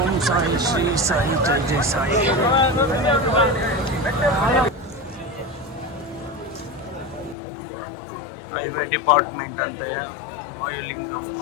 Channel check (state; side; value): drops out; right; at 7.4 s